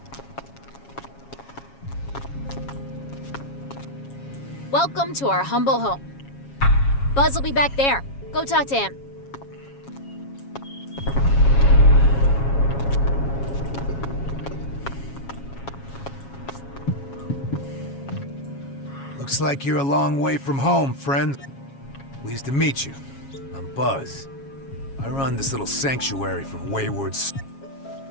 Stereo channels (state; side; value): late; right; 7.3 ms